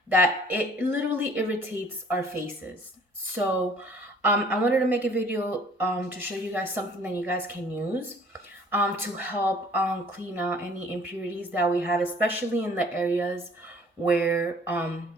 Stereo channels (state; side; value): normal; both; correlation 0.54